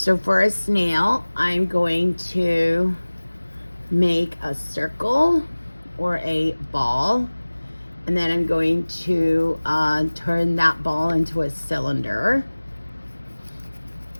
for a snail, I'm going to make a circle or a ball, and then I'm going to turn that ball into a cylinder.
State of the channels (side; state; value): both; inverted; correlation -1.00